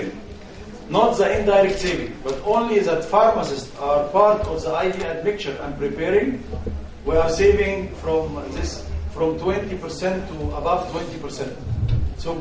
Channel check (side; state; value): both; identical; correlation 1.00